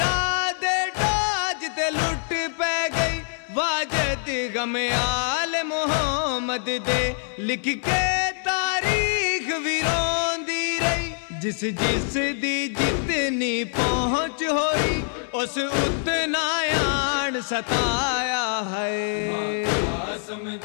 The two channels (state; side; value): silent; right; 62 dB below the other